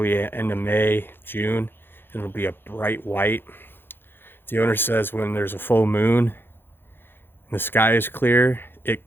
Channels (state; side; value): late; right; 0.10 ms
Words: end of May, June, and it'll be a bright white. The owner says when there's a full moon and the sky is clear, it